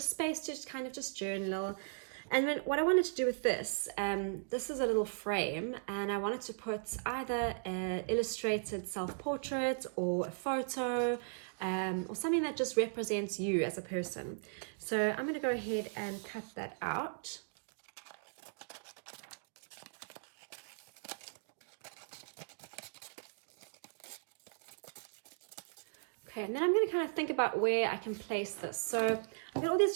space to just kind of just journal. And then what I wanted to do with this, this is a little frame, and I wanted to put either an illustrated self-portrait or a photo, or something that just represents you as a person. So I'm going to go ahead and cut that out. Okay, and then I'm going to kind of think about where I can place this. So I've got all these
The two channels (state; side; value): silent; left; digital silence